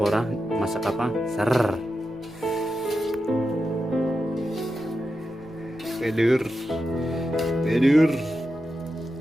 ora? Masak apa? Ser. Tidur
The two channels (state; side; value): noise; left; rumble, 25 dB below the sound